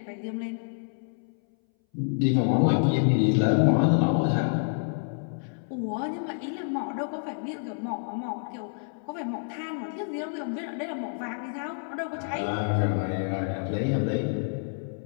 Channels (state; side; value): silent; right; 59 dB below the other